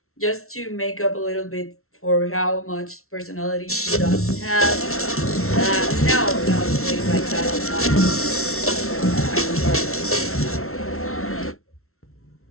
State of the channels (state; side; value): late; right; 0.63 ms